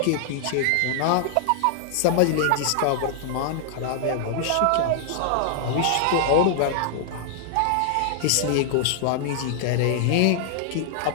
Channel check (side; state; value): both; different; correlation -0.01